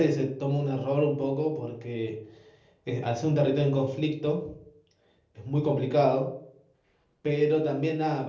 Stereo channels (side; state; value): both; identical; correlation 1.00